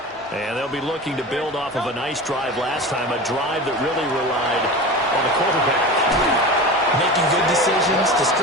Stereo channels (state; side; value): normal; both; correlation 0.31